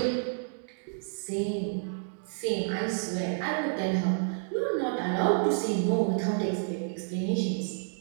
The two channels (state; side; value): silent; left; digital silence